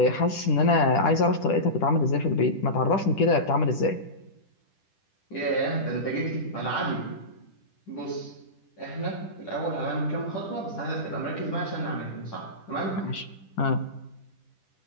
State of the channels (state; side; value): late; right; 10 ms